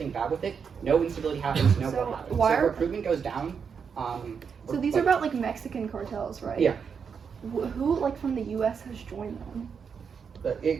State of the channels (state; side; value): quieter; left; 6.4 dB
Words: bad with it, no instability happens, no So war happens. why So are- recruitment goes down. So these are about like Mexican cartels, right? Yeah. Who like from the U.S. has joined them? But it